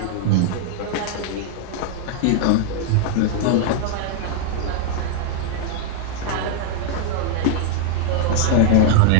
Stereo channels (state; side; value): different; both; correlation 0.00